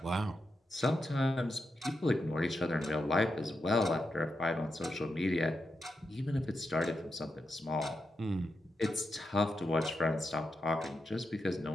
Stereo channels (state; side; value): normal; both; correlation 0.86